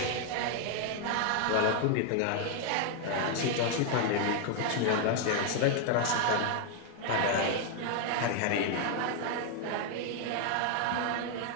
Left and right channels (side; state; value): both; different; correlation 0.00